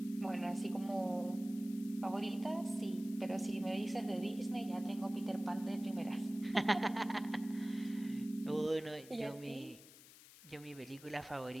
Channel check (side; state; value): left; noise; hiss, 19 dB below the sound